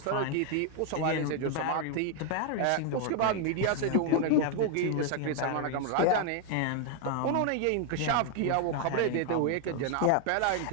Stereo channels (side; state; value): both; different; correlation 0.00